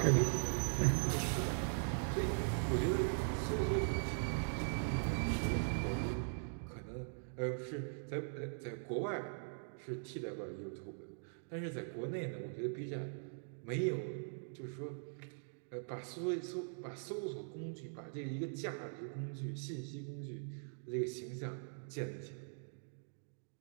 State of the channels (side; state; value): left; silent; digital silence